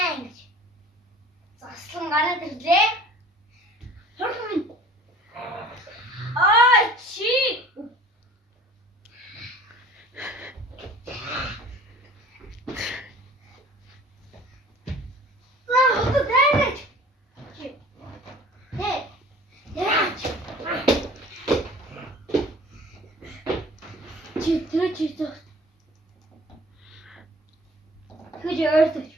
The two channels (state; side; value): normal; both; correlation 0.47